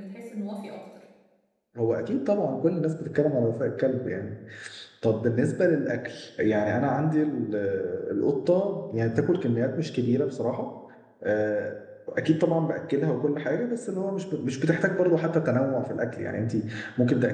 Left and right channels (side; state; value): both; identical; correlation 1.00